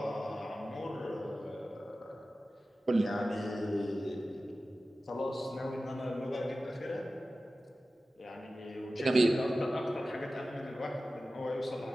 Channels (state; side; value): normal; both; correlation 0.95